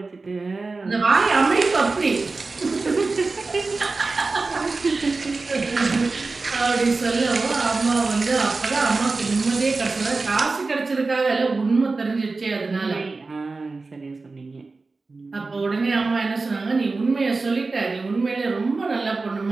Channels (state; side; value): quieter; left; 3.8 dB